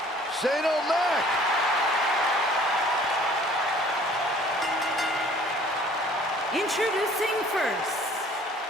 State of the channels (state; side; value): normal; both; correlation 0.54